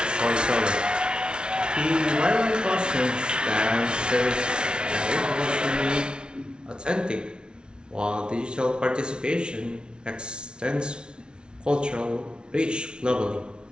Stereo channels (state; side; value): late; left; 0.056 ms